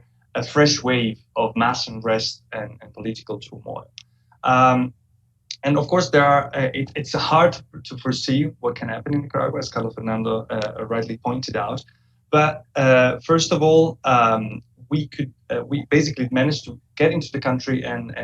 a fresh wave of mass unrest and political turmoil. And of course, it's hard to foresee what can happen in Nicaragua, as Carlos Fernando rightly pointed out. But first of all, we basically managed to get into the country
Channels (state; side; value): identical; both; correlation 1.00